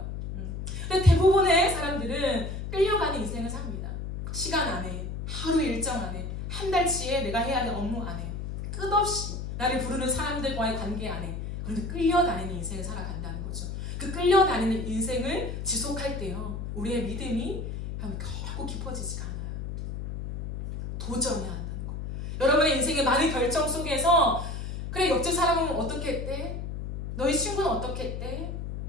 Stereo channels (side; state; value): left; noise; hum, 6 dB below the sound